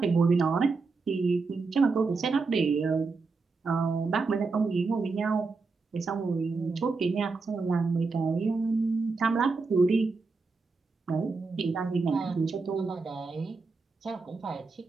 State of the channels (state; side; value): quieter; left; 4.2 dB